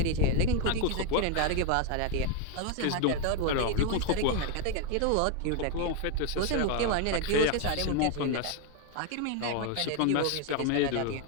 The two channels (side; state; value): both; different; correlation 0.01